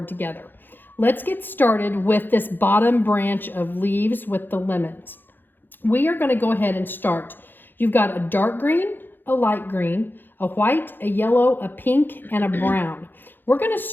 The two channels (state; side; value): late; right; 0.094 ms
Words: together. Let's get started with this bottom branch of leaves with the lemons. We are going to go ahead and start. You've got a dark green, a light green, a white, a yellow, a pink, and a brown. We're going to